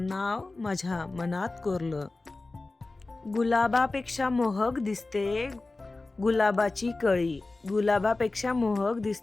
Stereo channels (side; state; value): right; quieter; 3.3 dB